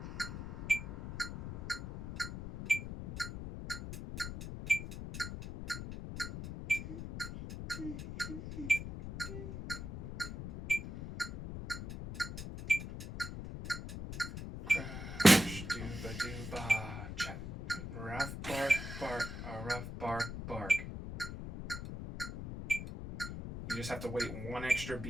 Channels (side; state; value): left; noise; rumble, 7 dB below the sound